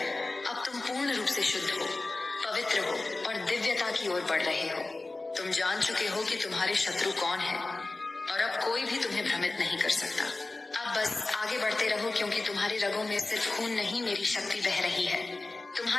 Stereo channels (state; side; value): quieter; right; 3.2 dB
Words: अब तुम पूर्ण रूप से शुद्ध हो, पवित्र हो और दिव्यता की ओर बढ़ रहे हो। तुम जान चुके हो कि तुम्हारे शत्रु कौन है, और अब कोई भी तुम्हें भ्रमित नहीं कर सकता। अब बस आगे बढ़ते रहो, क्योंकि तुम्हारे रगों में सिर्फ खून नहीं, मेरी शक्ति बह रही है।